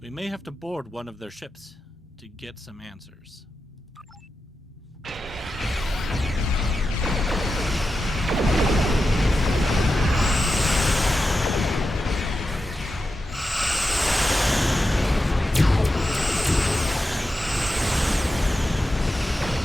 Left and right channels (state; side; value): normal; both; correlation 0.90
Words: We may have to board one of their ships to get some answers.